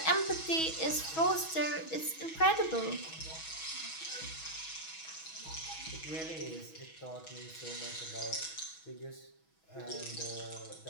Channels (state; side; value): late; right; 6.2 ms